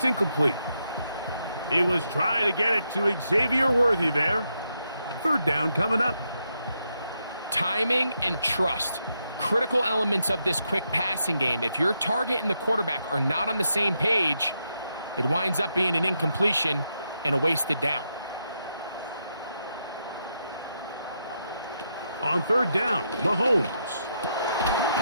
incomplete. He was trying to get it to Xavier Worthy there. 3rd down coming up. Timing and trust. Critical elements of this quick passing game. If your target and the quarterback are not on the same page, it winds up being an incompletion and a wasted down. On 3rd down, Mahomes.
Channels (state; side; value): inverted; both; correlation -0.81